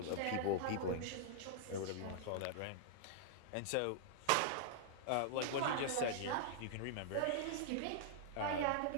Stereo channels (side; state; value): both; different; correlation -0.01